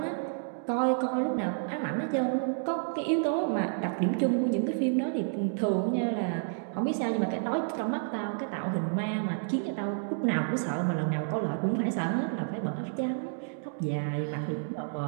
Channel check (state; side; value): silent; left; digital silence